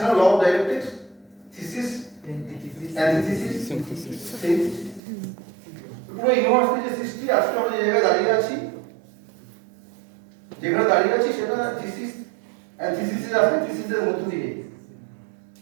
না, law of dialectics, thesis antithesis synthesis. পুরো ইউনিভার্সিটি যে সৃষ্টি, আজকে আমরা যে জায়গায় দাঁড়িয়ে আছি সেটা থিসিস এন্ড থিসিসের আছে, থিসিসের মধ্য দিয়ে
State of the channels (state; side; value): drops out; left; at 5.0 s